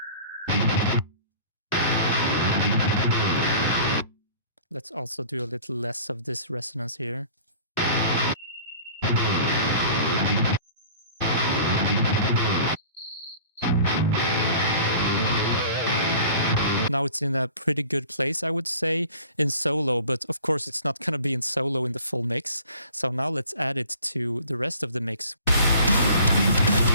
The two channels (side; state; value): both; inverted; correlation -0.46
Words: Let's also do a little less of this resonance here. Now it's in a pretty good place, I would say, in solo, but of course it's not going to be in solo in the full mix. So now let's add it to the rest of the mix.